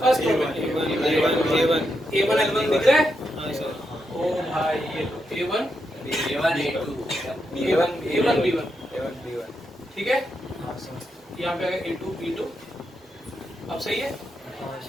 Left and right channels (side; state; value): both; normal; correlation 0.83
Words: फर्स्ट A1 L1 दिख रहा है? ओ भाई ये A1 B1 ठीक है। यहाँ पे आ गया A2 B2, अब सही है।